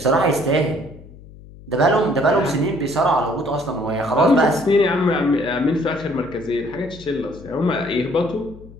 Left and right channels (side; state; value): left; noise; hum, 19 dB below the sound